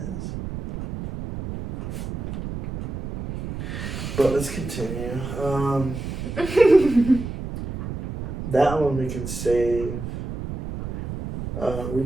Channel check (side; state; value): right; noise; rumble, 7 dB below the sound